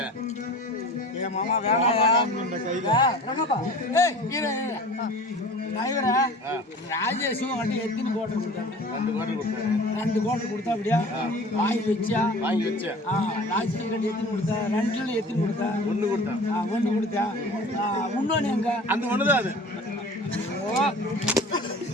ஏ மாமா வேணாயா? ரங்கப்பா. ஏய் இரு. டிரைவரா ராஜேஷும் வண்டி எத்தனை கோட்டை கொடுத்தாங்க? 2 கோட்டை கொடுத்தேன். 2 கோட்டை கொடுத்தா அப்படியா? வாங்கி வச்சா? வாங்கி வச்சேன். ராஜேஷ் கட்டி எத்தனை கொடுத்தா? 2ல எத்தனை கொடுத்தா? 1 கொடுத்தேன். 1 கொடுத்தா? இன்னொன்னு எங்க? அந்த ஒண்ணுதான் அது.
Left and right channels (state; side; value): normal; both; correlation 0.42